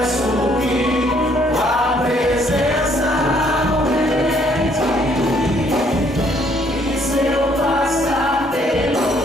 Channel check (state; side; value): normal; both; correlation 0.65